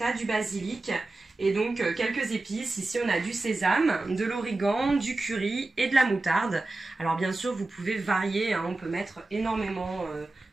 du basilic et donc quelques épices. Ici on a du sésame, de l'origan, du curry et de la moutarde. Alors bien sûr vous pouvez varier, hein, on peut mettre énormément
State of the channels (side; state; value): left; quieter; 3.1 dB